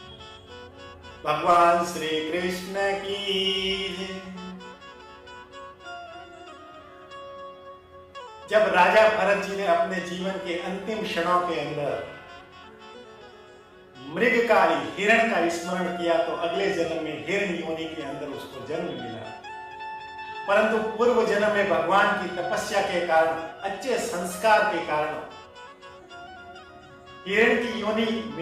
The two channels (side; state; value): both; identical; correlation 1.00